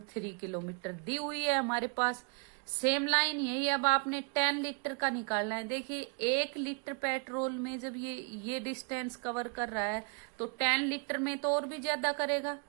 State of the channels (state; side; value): quieter; left; 37.2 dB